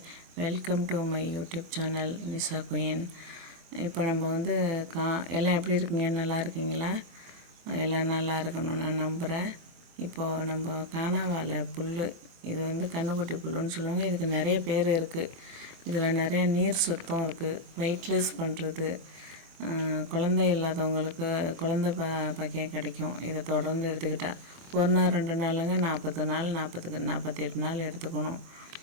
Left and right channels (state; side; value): late; left; 23 ms